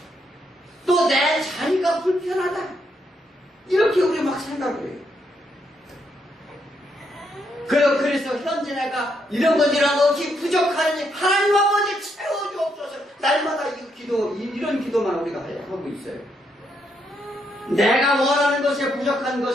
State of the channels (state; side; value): normal; both; correlation 0.77